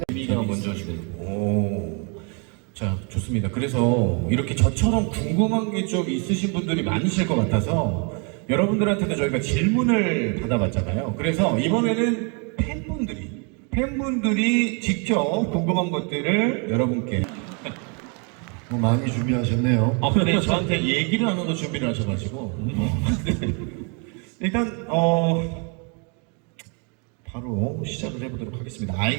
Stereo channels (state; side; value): quieter; left; 36.0 dB